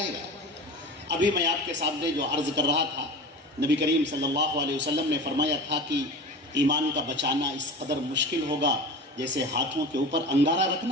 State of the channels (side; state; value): both; normal; correlation 0.33